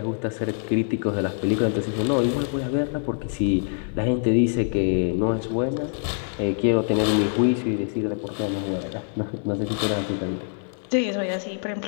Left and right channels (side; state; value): right; silent; 57 dB below the other